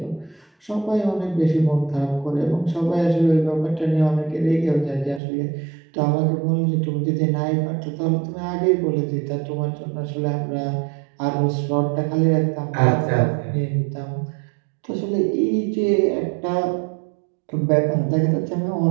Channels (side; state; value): left; drops out; at 5.2 s